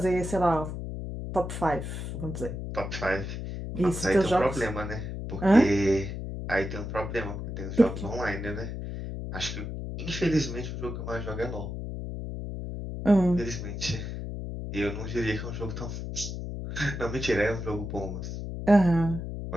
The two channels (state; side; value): noise; left; hum, 6 dB below the sound